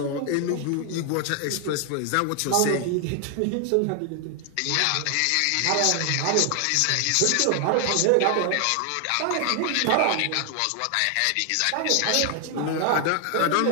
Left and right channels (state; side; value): different; both; correlation 0.00